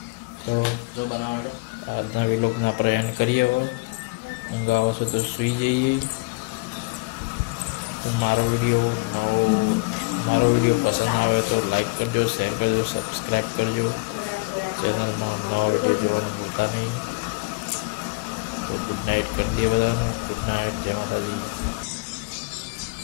તો આજના વિલોગના આપણે એન્ડ કરીએ. હવે ઊંઘ આવે છે તો સૂઈ જઈએ. તો મારો વિડીયો પસંદ આવે તો લાઈક કરજો, શેર કરજો, સબસ્ક્રાઈબ કરજો. ચેનલમાં નવા વિડીયો જોવાનું ભૂલતા નહીં. તો ગુડ નાઇટ કરી દઈએ બધાને. ગુડ નાઇટ, જય માતાજી.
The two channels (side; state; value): right; quieter; 26.0 dB